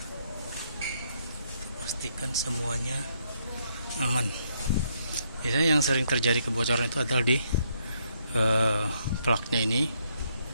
pastikan semuanya aman. Biasanya yang sering terjadi kebocoran itu adalah di plugnya ini,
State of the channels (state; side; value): inverted; both; correlation -0.73